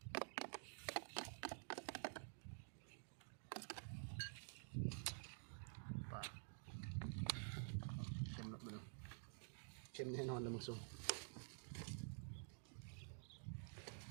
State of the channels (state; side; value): silent; left; digital silence